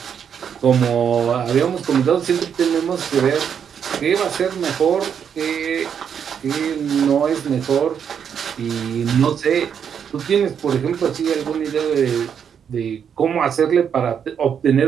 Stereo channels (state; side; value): quieter; left; 7.8 dB